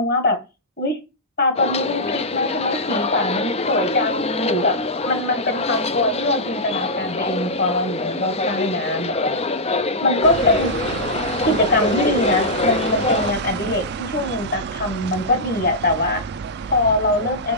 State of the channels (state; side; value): normal; both; correlation -0.11